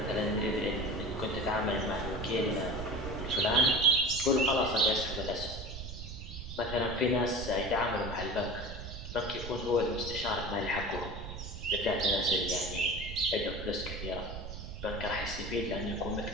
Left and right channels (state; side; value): noise; right; rumble, 8 dB below the sound